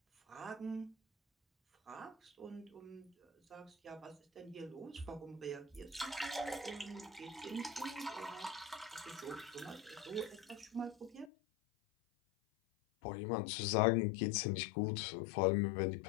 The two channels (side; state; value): right; drops out; at 11.3 s